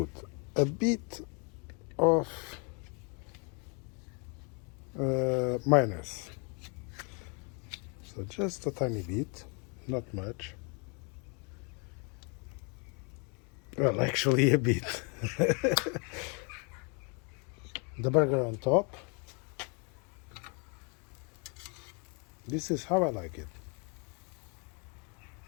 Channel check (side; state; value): right; quieter; 35.0 dB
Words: a bit of mayonnaise. So just a tiny bit, not much. Well, actually a bit. The burger on top. This is how I like it.